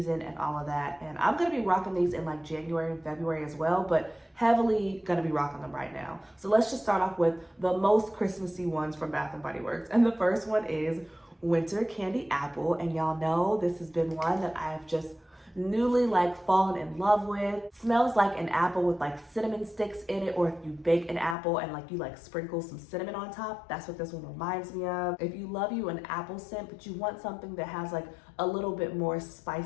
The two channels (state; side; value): drops out; right; at 21.4 s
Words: and all of that. And I'm gonna be rocking these in like January and February as well, but heavily gonna be rocking them right now. So let's just start off with the most Christmassy ones from Bath & Body Works. And the first one is Winter Candy Apple. And y'all know this has been one that I've just newly like fallen in love with. Smells like an apple with like cinnamon sticks in it, or if you bake an apple and like you like sprinkle some cinnamon on top, that's what this one reminds me of. If you love you an apple scent but you want something that has like a little bit more